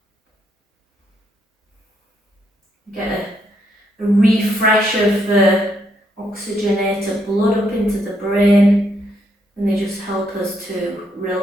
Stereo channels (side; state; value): both; normal; correlation 0.75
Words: You get a refresh of the oxygenated blood up into the brain, and they just help us to